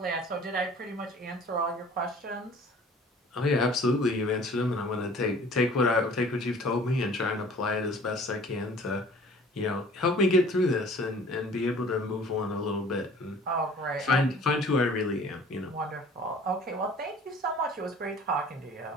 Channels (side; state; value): both; normal; correlation 0.49